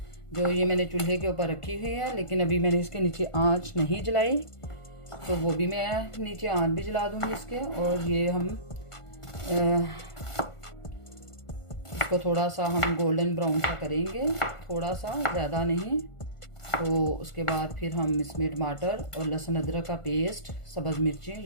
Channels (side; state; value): right; late; 1.5 ms